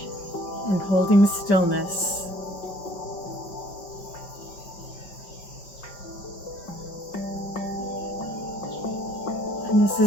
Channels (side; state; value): right; late; 5.1 ms